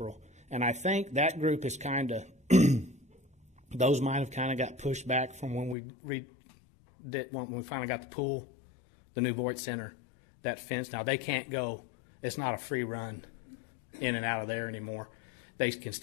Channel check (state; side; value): drops out; right; at 5.8 s